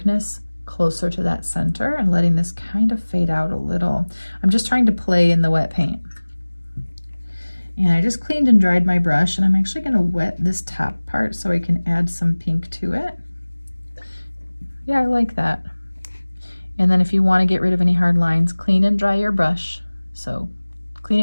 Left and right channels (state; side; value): inverted; both; correlation -1.00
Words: closer to that center and letting this kind of fade out a little. I'm just trying to play in the wet paint. And I just cleaned and dried my brush, and I'm actually going to wet this top part so I can add some pink to it. Yeah, I like that. And then if you want to get rid of any hard lines, clean and dry your brush. So clean